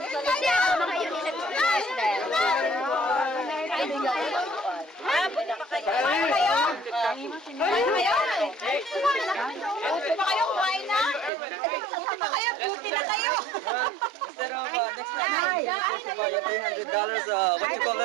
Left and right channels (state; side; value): drops out; left; at 11.3 s